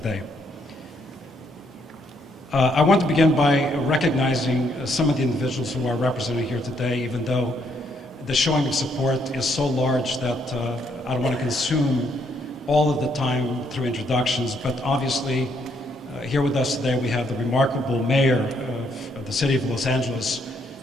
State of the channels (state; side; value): normal; both; correlation 0.72